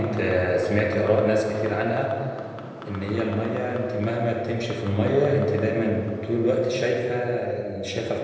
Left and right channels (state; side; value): identical; both; correlation 1.00